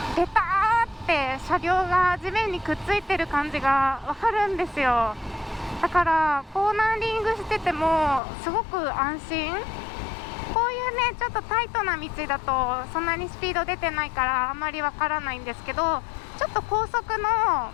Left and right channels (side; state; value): right; drops out; at 8.2 s